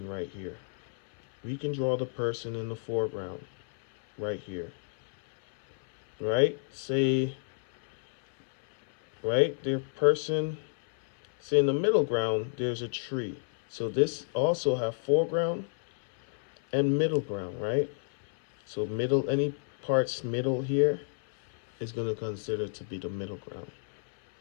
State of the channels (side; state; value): right; silent; 58 dB below the other